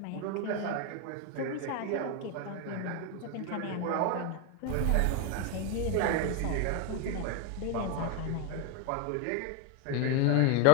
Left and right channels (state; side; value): different; both; correlation 0.01